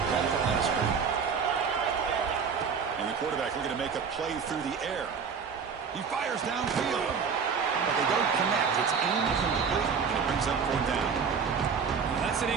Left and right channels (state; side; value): quieter; left; 6.1 dB